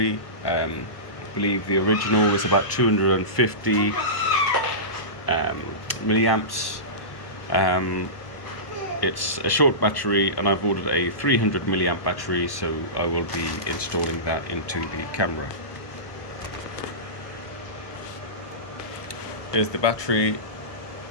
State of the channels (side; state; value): right; late; 1.1 ms